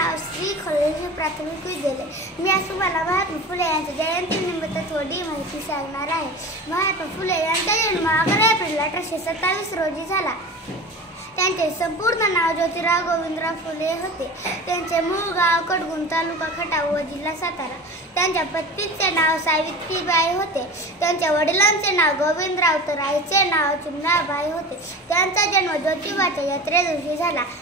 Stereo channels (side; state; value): both; normal; correlation 0.33